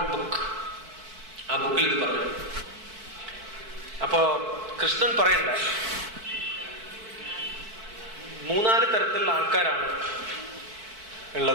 ബുക്ക്. ആ ബുക്കിൽ ഇത് പറഞ്ഞു. അപ്പോ കൃഷ്ണൻ പറയണ്ട, 3-4 തരത്തിലുള്ള ആൾക്കാരാണ്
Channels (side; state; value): left; late; 4.5 ms